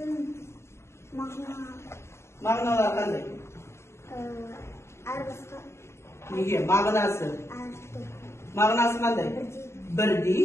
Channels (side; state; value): right; late; 0.13 ms